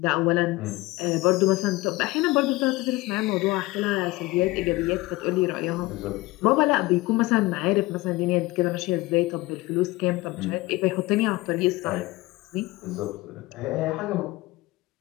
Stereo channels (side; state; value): right; quieter; 20.7 dB